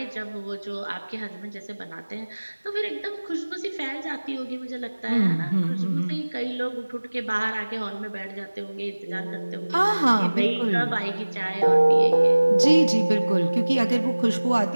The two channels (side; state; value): both; inverted; correlation -1.00